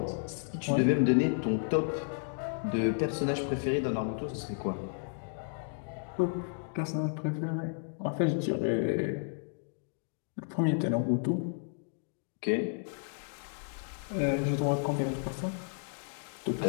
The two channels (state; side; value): silent; right; digital silence